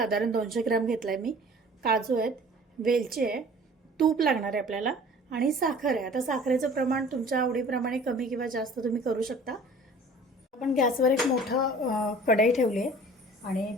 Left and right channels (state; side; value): normal; both; correlation 0.47